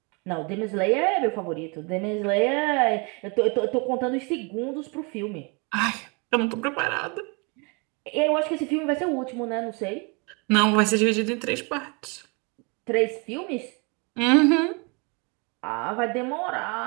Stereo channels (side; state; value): left; quieter; 31.6 dB